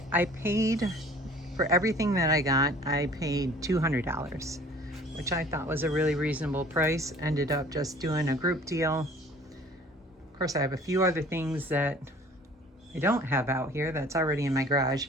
paid for everything that I got. I paid $200, which I thought was a really reasonable price. Ended up just doing a group deal. Of course, I have a few other things that I don't have out here that's already in my garage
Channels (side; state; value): both; normal; correlation 0.50